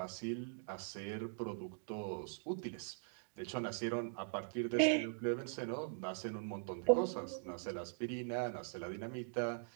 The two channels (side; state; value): left; silent; digital silence